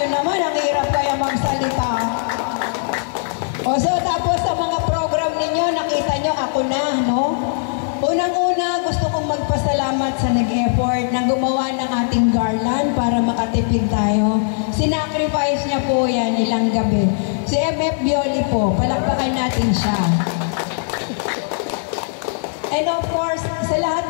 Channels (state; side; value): silent; right; digital silence